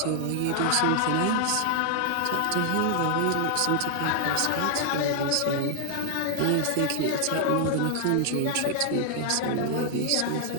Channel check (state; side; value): different; both; correlation 0.00